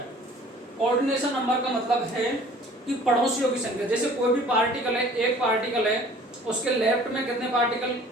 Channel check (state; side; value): normal; both; correlation 0.50